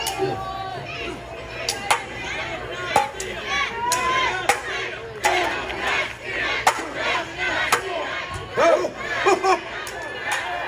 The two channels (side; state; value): both; identical; correlation 1.00